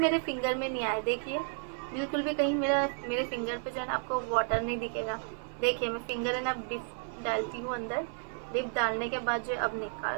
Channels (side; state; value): left; silent; 56 dB below the other